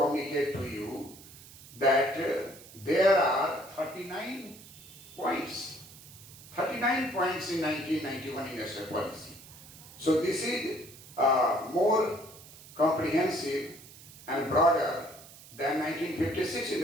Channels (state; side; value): noise; right; hiss, 19 dB below the sound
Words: to you that there are 39 points. 39 points in 1991 industrial policy. So this is more comprehensive and broader than 1956